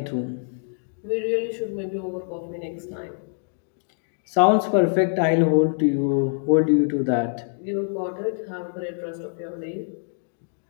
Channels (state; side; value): silent; right; digital silence